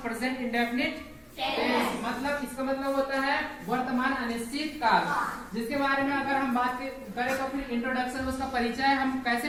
प्रेजेंट इंडेफिनिट टेंस। मतलब इसका मतलब होता है वर्तमान अनिश्चित काल, जिसके बारे में अगर हम बात करें तो फिर इंट्रोडक्शन, उसका परिचय हम कैसे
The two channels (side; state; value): both; identical; correlation 1.00